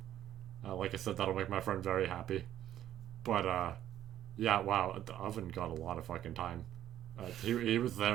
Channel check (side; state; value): left; quieter; 11.8 dB